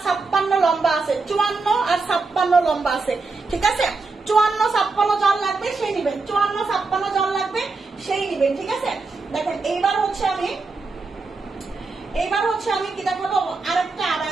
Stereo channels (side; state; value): left; quieter; 4.0 dB